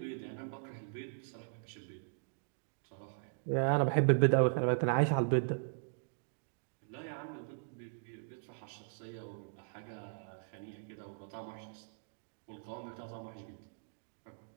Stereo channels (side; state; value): left; silent; digital silence